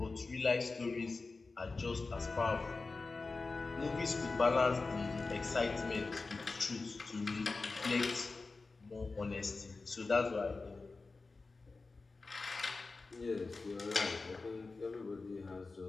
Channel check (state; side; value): quieter; right; 3.8 dB